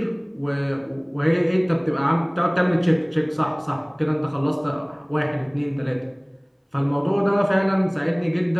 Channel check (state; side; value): identical; both; correlation 1.00